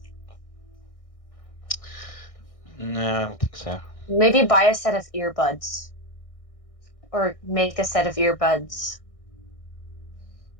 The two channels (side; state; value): right; late; 1.6 ms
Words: No, I don't think so. Maybe buy a set of earbuds. Or make a set of earbuds.